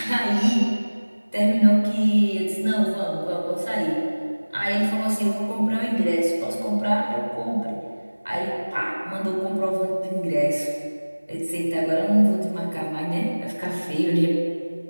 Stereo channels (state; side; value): inverted; both; correlation -1.00